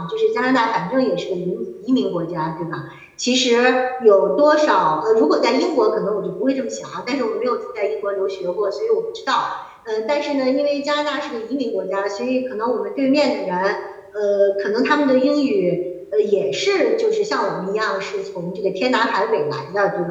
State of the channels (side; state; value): both; identical; correlation 1.00